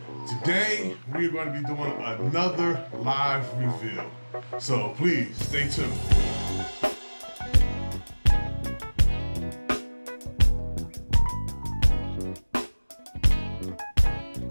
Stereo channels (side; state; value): both; inverted; correlation -1.00